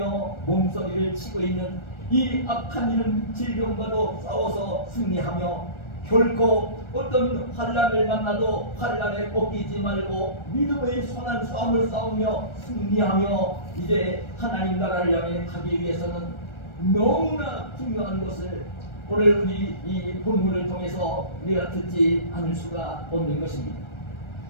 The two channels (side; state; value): right; late; 1.3 ms